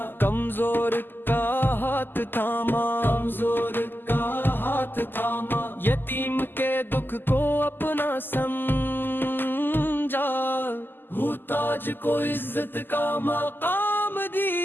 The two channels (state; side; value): late; right; 0.093 ms